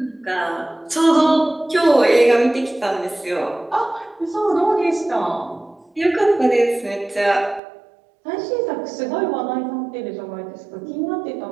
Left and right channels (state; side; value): drops out; left; at 7.6 s